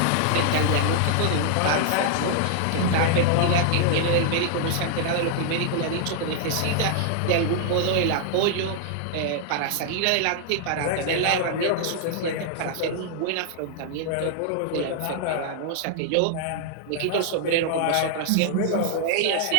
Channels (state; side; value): different; both; correlation 0.00